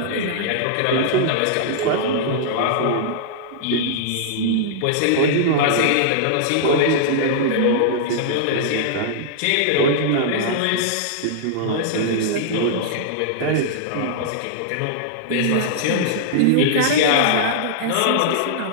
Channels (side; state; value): both; different; correlation -0.02